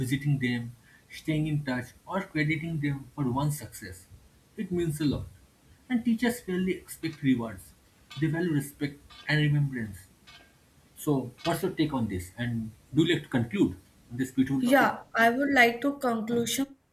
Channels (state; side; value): identical; both; correlation 1.00